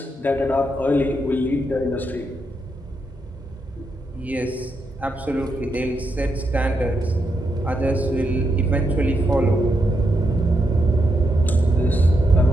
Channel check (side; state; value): both; normal; correlation 0.82